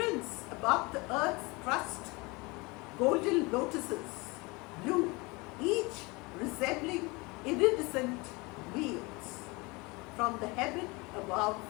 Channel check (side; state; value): right; quieter; 25.7 dB